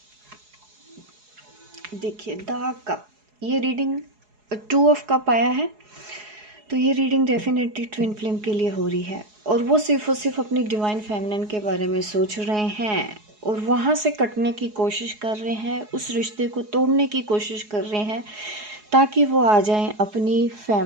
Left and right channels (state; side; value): late; left; 4.8 ms